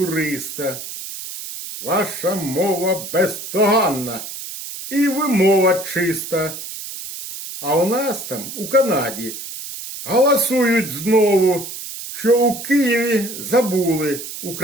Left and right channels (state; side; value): noise; right; hiss, 10 dB below the sound